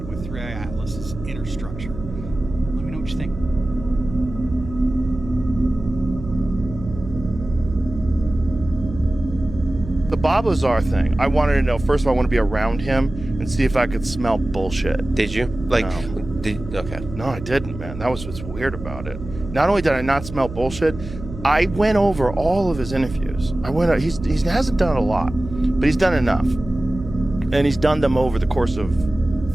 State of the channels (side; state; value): right; noise; hum, 12 dB below the sound